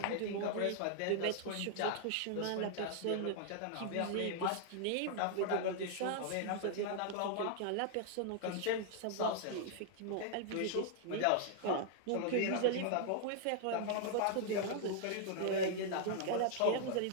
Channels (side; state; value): both; different; correlation 0.00